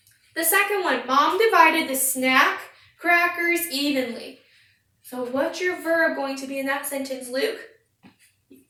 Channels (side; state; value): both; identical; correlation 1.00